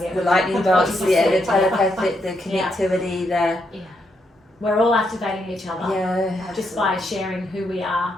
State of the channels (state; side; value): normal; both; correlation 0.79